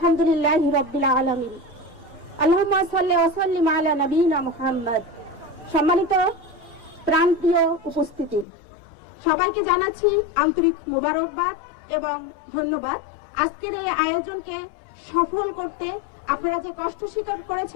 রাব্বিল আলামিন। আল্লাহুম্মা সাল্লি ওয়া সাল্লিম আলা নবিয়িনা মুহাম্মদ। সম্মানিত প্রাণপ্রিয় উপস্থিতি, সবাইকে জানাচ্ছি আন্তরিক মোবারকবাদ এবং ধন্যবাদ। আজকের এই আয়োজনকে সফল করতে আপনারা যে কষ্ট স্বীকার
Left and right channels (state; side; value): drops out; right; at 8.5 s